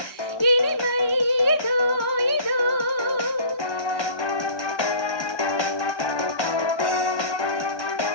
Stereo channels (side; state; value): right; late; 1.2 ms